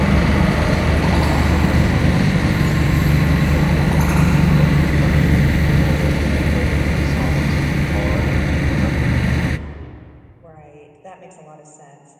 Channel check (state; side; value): identical; both; correlation 1.00